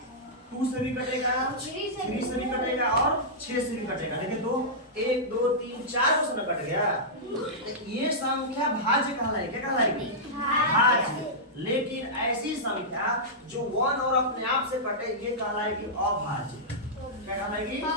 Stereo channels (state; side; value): normal; both; correlation -0.13